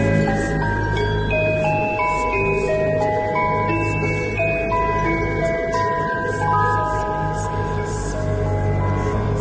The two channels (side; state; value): both; identical; correlation 1.00